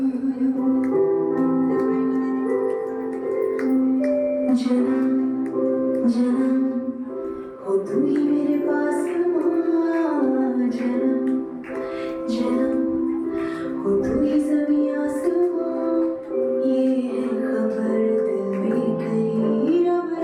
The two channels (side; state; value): both; identical; correlation 1.00